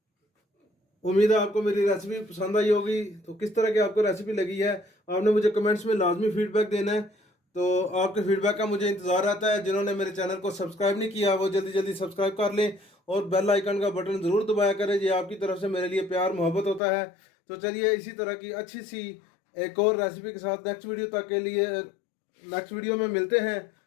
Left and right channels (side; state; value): right; drops out; at 16.8 s